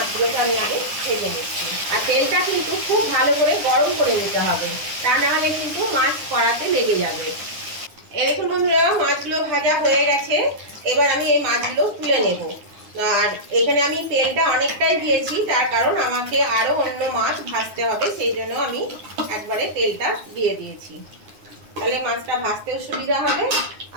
আমি আগে ভেজে নিচ্ছি। আর তেলটা কিন্তু খুব ভালো করে গরম করে নিতে হবে, তা না হলে কিন্তু মাছ কড়াতে লেগে যাবে। এরকম বন্ধুরা, মাছগুলো ভাজা হয়ে গেছে। এবার আমি এই মাছগুলো তুলে নেব। আর এখানে আমি তেলটা অনেকটাই দিয়েছি, তার কারণ আমাকে আরো অন্য মাছ ভাজতে হবে, সেই জন্য আমি একবারে তেলটা দিয়ে দিয়েছি। তাহলে মাছটা ভাজতেও সুবিধা হবে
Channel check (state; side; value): late; left; 9.6 ms